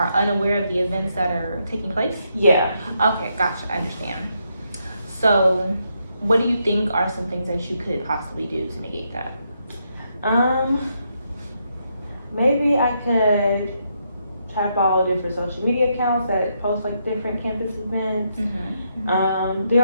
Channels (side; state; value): both; inverted; correlation -0.79